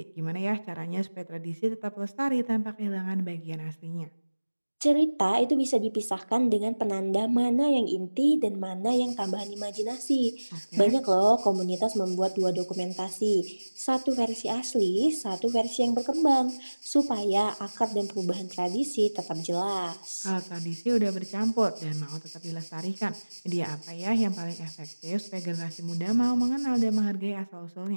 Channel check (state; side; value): inverted; both; correlation -1.00